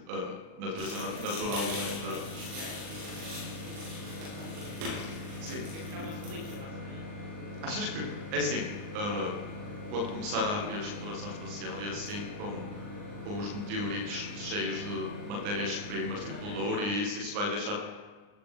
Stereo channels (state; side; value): late; left; 39 ms